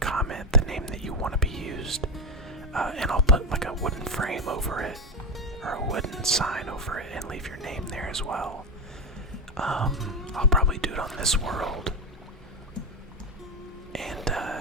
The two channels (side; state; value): both; normal; correlation 0.12